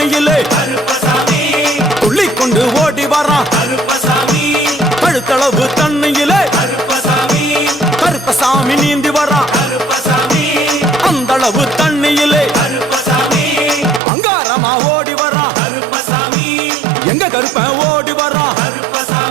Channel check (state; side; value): drops out; left; at 14.0 s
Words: கருப்பசாமி துள்ளி கொண்டு ஓடி வரான் கருப்பசாமி கழுத்தளவு தண்ணியிலே கருப்பசாமி கருப்பசாமி நீந்தி வரான் கருப்பசாமி அந்தளவு தண்ணியிலே கருப்பசாமி அங்காரமா ஓடி வரான் கருப்பசாமி எங்க கருப்பன் ஓடி வரான்